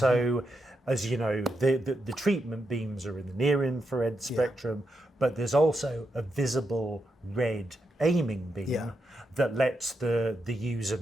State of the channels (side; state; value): both; normal; correlation 0.84